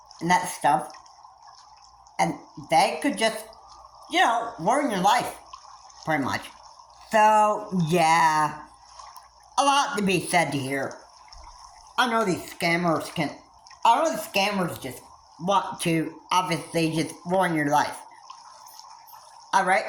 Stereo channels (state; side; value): identical; both; correlation 1.00